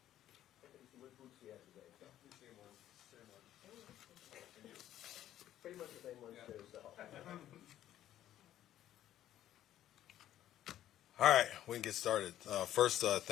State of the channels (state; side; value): quieter; right; 12.2 dB